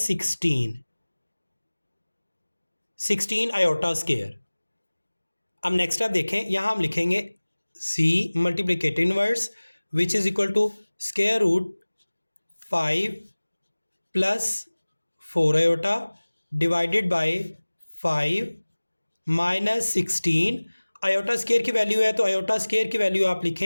16 आयोटा स्क्वायर। अब नेक्स्ट स्टेप देखें, यहाँ हम लिखेंगे c multiplicative inverse which is equal to square root 5 plus 4 iota divided by 5 minus 16 iota square की वैल्यू है तो आयोटा स्क्वायर की वैल्यू आप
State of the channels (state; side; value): inverted; both; correlation -1.00